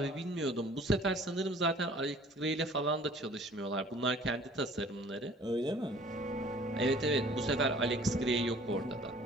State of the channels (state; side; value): normal; both; correlation 0.52